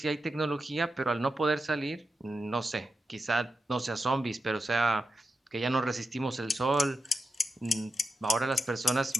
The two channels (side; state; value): both; normal; correlation 0.89